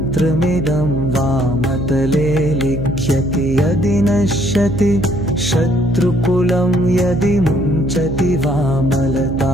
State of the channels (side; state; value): right; noise; hum, 7 dB below the sound